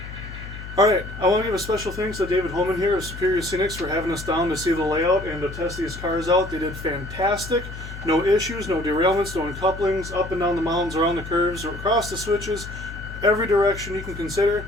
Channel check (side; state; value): left; noise; hum, 11 dB below the sound